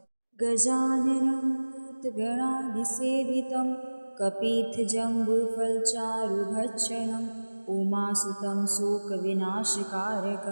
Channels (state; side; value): inverted; both; correlation -1.00